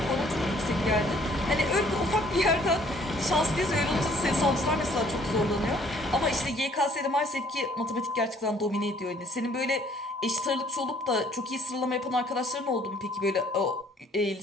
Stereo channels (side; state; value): both; normal; correlation 0.60